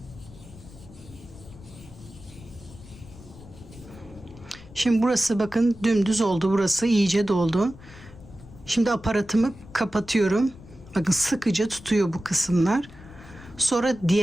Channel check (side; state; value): left; noise; rumble, 19 dB below the sound